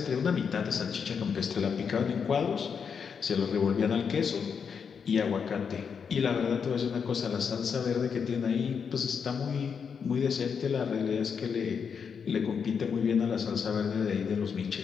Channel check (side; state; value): right; quieter; 6.5 dB